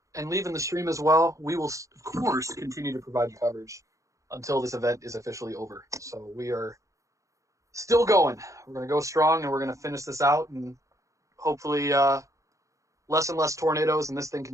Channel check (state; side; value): late; left; 0.15 ms